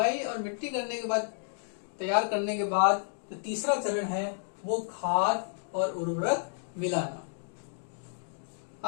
और मिट्टी करने के बाद, तैयार करने के बाद जो तीसरा चरण है वो खाद और उर्वरक मिलाना।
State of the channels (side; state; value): right; silent; digital silence